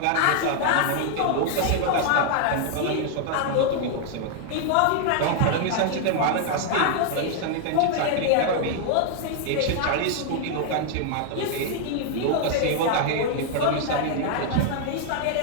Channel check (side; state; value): both; different; correlation 0.00